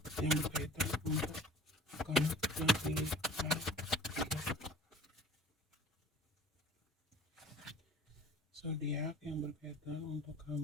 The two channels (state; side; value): normal; both; correlation 0.46